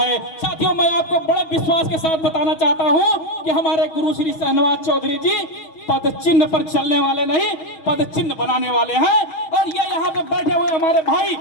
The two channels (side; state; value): right; late; 6.2 ms